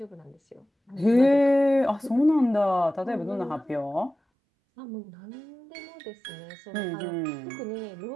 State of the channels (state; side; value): drops out; left; at 4.2 s